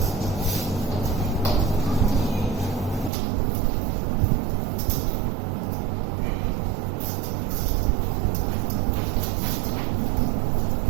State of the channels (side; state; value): left; drops out; at 3.1 s